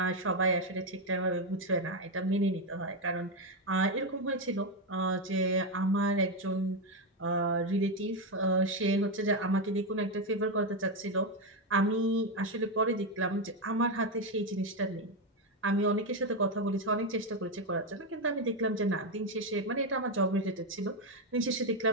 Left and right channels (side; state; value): both; normal; correlation 0.07